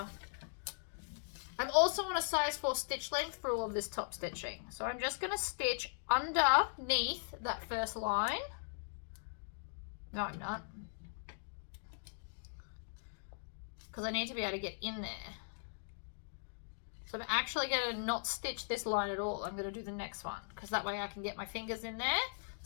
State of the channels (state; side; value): silent; right; digital silence